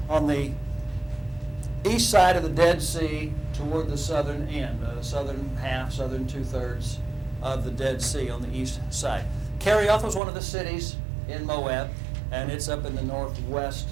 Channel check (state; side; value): drops out; left; at 10.2 s